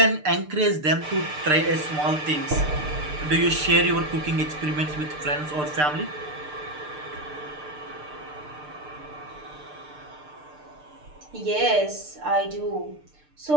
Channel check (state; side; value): late; left; 6.7 ms